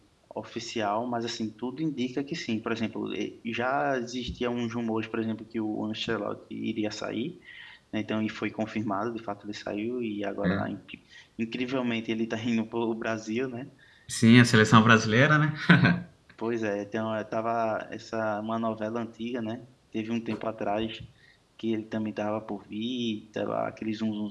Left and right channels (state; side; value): identical; both; correlation 1.00